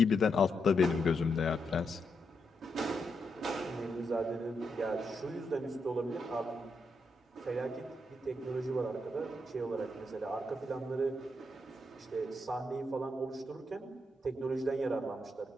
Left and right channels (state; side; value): normal; both; correlation 0.82